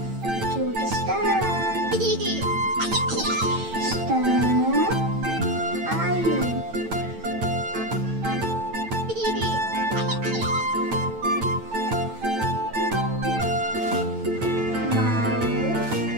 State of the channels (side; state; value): left; late; 9.0 ms